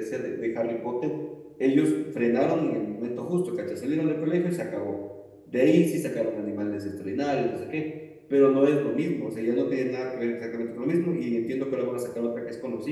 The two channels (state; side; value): identical; both; correlation 1.00